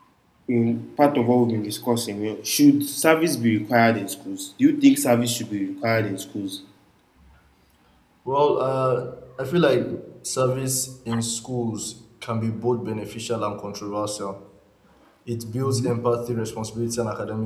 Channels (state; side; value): identical; both; correlation 1.00